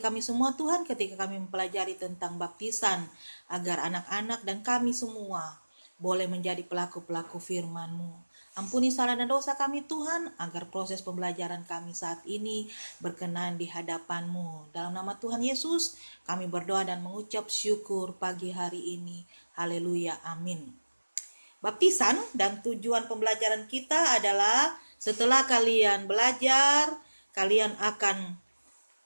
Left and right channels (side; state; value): both; inverted; correlation -1.00